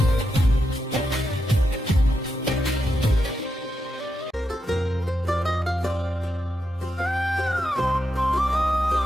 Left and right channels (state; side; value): normal; both; correlation 0.85